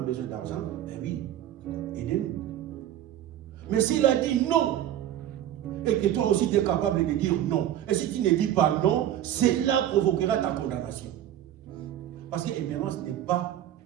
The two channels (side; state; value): left; quieter; 11.7 dB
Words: besoin d'argent, ben oui, aidez-nous. Mais s'il a dit non, et que toi aussi tu es capable de dire non, et si tu ne dis pas non, cela provoquera ta condamnation. Parce que Émérance n'est pas